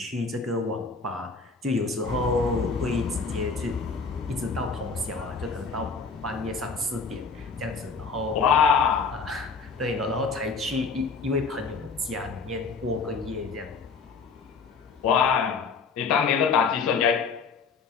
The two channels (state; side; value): quieter; right; 4.9 dB